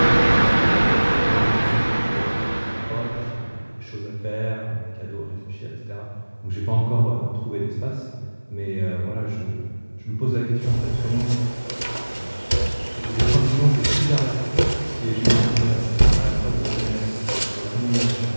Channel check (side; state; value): both; inverted; correlation -1.00